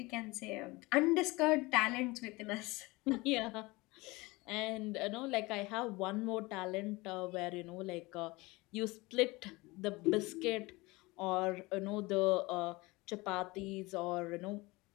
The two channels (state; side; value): quieter; right; 22.8 dB